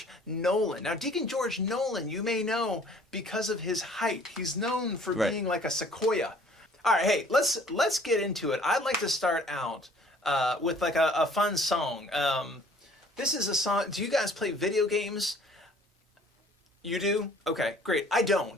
Nolan. Now, Deacon George Nolan, you may know because of his height. He's known for being like a sequoia. All right, hey, let's get into it. I'd like to start out with like a fun song. This is a song. Do you guys play video games? You do? Okay, great. I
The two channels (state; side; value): normal; both; correlation 0.55